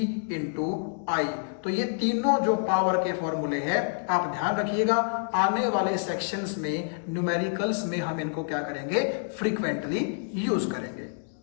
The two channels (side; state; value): right; silent; digital silence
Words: इंटू आई। तो ये तीनों जो पावर के फॉर्मूले हैं आप ध्यान रखिएगा, आने वाले सेक्शंस में न्यूमेरिकल्स में हम इनको क्या करेंगे? फ्रीक्वेंटली यूज करेंगे।